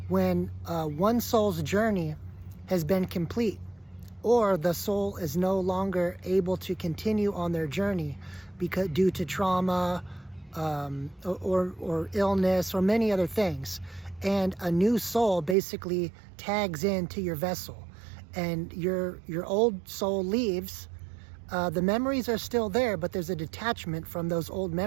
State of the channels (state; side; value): drops out; left; at 15.6 s